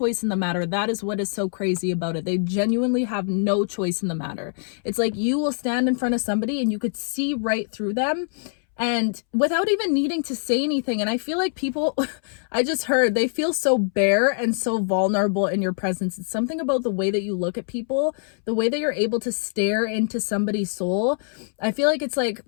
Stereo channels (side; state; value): right; silent; 63 dB below the other